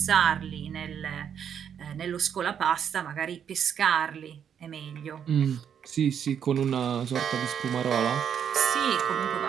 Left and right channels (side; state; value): left; quieter; 8.3 dB